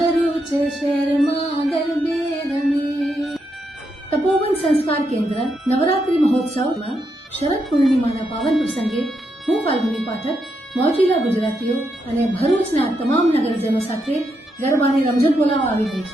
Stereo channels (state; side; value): normal; both; correlation 0.81